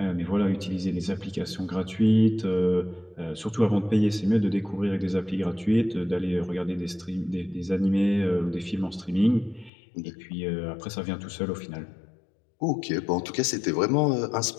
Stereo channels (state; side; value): drops out; right; at 9.7 s